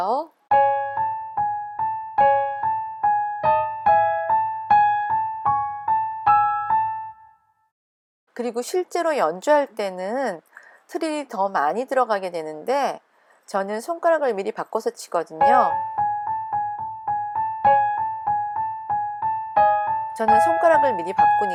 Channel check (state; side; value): identical; both; correlation 1.00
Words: 그리고 실제로 연주할 때는 트릴이 더 많이 들어가게 되는데, 저는 손가락을 미리 바꿔서 치거든요. 저는 손가락을 미리